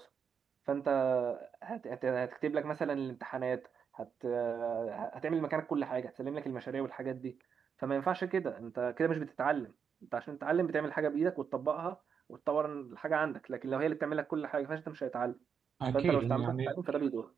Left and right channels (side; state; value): left; quieter; 6.8 dB